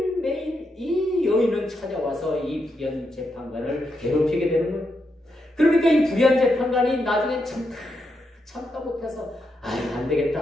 이 여인은 찾아와서 이 불의한 재판관을 괴롭히게 되는 거예요. 그러니까 이 불의한 재판관이 나중에 참다 못해서 안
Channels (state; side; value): normal; both; correlation 0.83